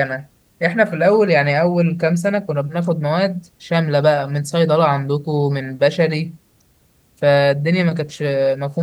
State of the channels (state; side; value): identical; both; correlation 1.00